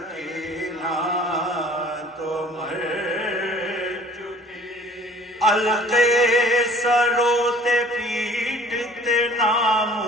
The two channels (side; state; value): both; normal; correlation 0.52